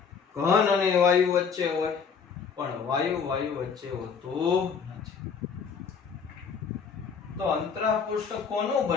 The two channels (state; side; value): quieter; right; 6.1 dB